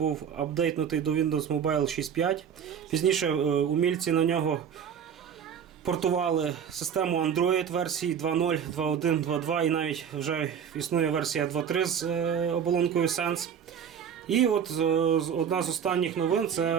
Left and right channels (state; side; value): quieter; left; 7.9 dB